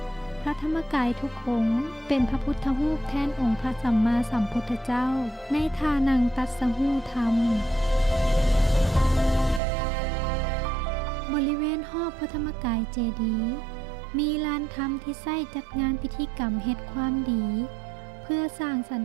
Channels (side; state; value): left; drops out; at 9.6 s